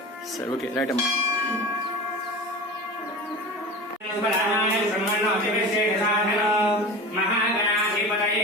సరే ఓకే రైట్ అమ్మా. మహాగణాధిపతయే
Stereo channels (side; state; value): both; normal; correlation 0.32